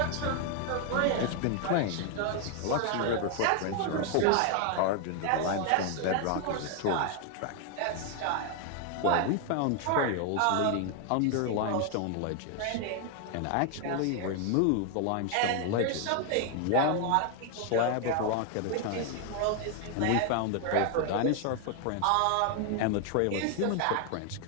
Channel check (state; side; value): different; both; correlation 0.00